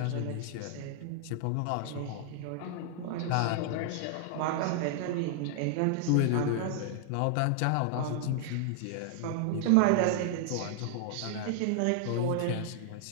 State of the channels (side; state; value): both; different; correlation -0.01